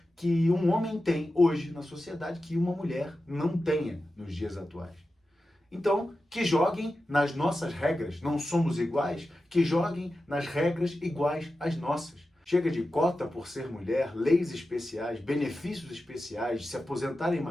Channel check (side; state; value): both; normal; correlation 0.92